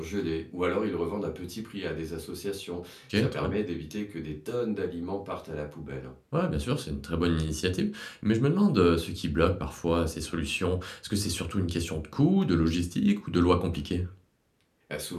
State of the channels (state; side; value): identical; both; correlation 1.00